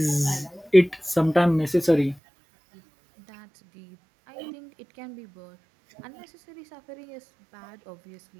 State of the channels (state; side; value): drops out; left; at 2.2 s